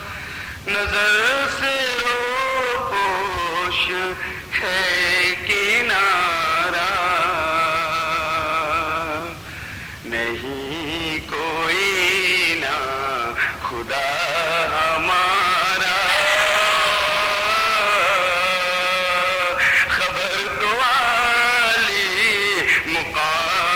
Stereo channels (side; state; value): both; identical; correlation 1.00